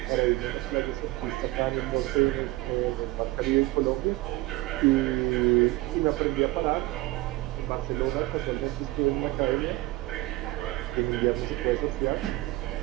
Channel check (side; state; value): left; quieter; 19.4 dB